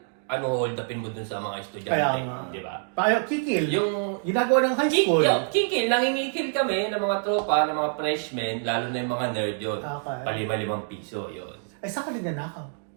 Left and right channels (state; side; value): silent; left; digital silence